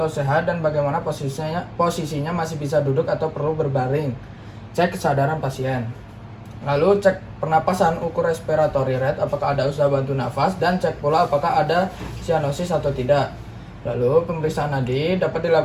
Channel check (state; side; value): identical; both; correlation 1.00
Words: sehat dan bagaimana posisinya masih bisa duduk atau perlu berbaring. Cek kesadaran pasien. Lalu cek pernapasan, ukur respiratory rate, apakah ada usaha bantu nafas, dan cek pula apakah ada sianosis atau tidak. Lalu pemeriksaan nadi dapat